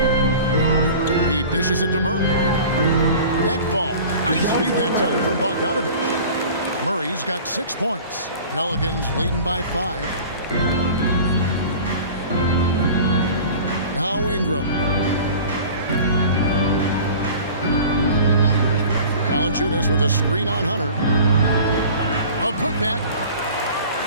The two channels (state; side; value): inverted; both; correlation -0.41